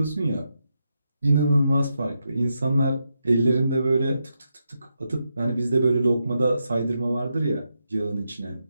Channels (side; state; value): both; inverted; correlation -0.85